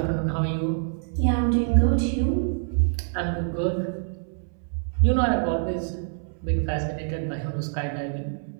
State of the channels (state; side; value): silent; left; 61 dB below the other